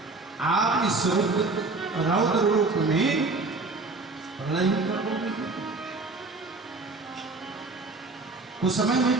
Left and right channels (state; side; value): quieter; left; 3.5 dB